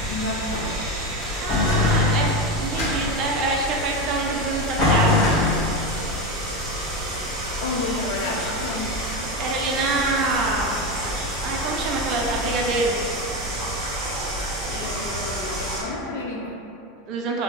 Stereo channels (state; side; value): normal; both; correlation 0.17